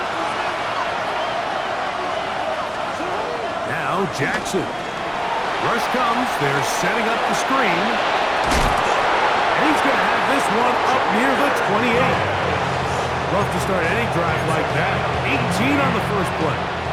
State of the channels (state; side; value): identical; both; correlation 1.00